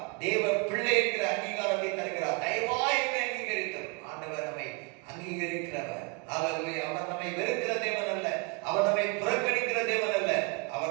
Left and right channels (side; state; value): left; quieter; 31.7 dB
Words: தேவ பிள்ளை என்கிற அங்கீகாரத்தை தருகிறார். தயவாய் என்னை அங்கீகரித்தார். ஆண்டவர் நம்மை அங்கீகரிக்கிறவர். அல்லேலூயா. அவர் நம்மை வெறுக்கிற தேவன் அல்ல, அவர் நம்மை புறக்கணிக்கிற தேவன் அல்ல,